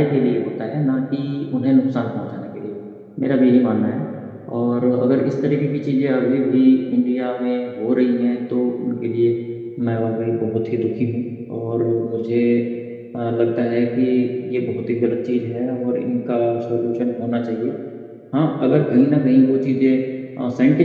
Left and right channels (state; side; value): identical; both; correlation 1.00